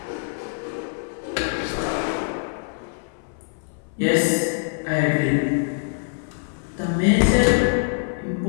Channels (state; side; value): silent; right; 61 dB below the other